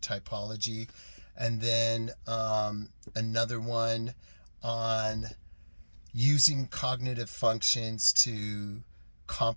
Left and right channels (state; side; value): inverted; both; correlation -1.00